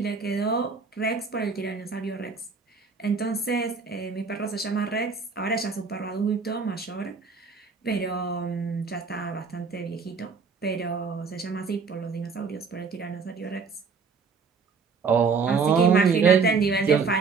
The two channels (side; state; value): left; quieter; 5.1 dB